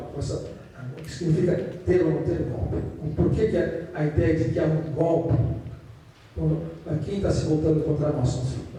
o que significa ter ou não ter golpe. Por que a ideia de que há um golpe? Quem está se voltando contra nós?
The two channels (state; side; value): identical; both; correlation 1.00